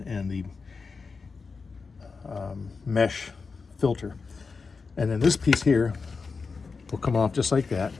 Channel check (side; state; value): right; quieter; 4.7 dB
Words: and the mesh filter. And then this piece here will come off just like that.